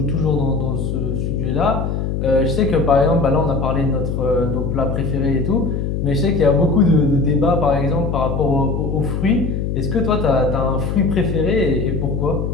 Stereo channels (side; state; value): left; noise; hum, 2 dB below the sound